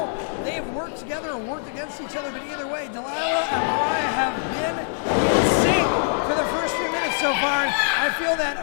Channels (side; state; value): right; silent; 63 dB below the other